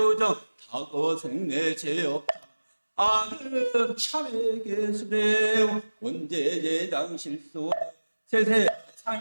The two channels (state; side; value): inverted; both; correlation -1.00